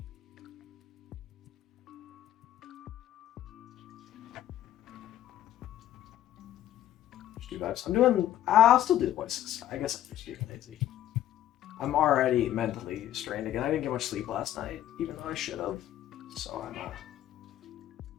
I'll still do voices. I guess I'm just being lazy. I'm already mentally strained again. I didn't get much sleep last night, even though I should have. So I'm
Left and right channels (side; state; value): right; quieter; 12.2 dB